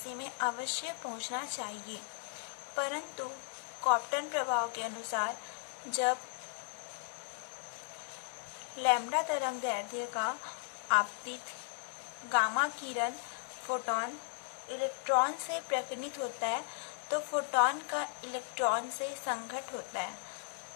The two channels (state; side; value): silent; right; 53 dB below the other